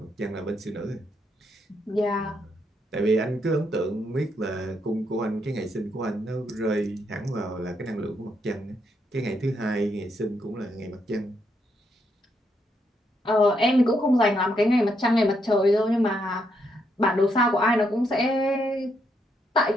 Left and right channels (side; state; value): both; normal; correlation 0.77